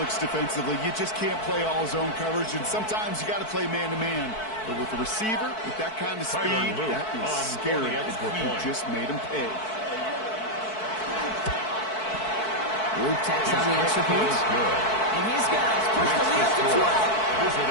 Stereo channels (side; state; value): right; late; 4.6 ms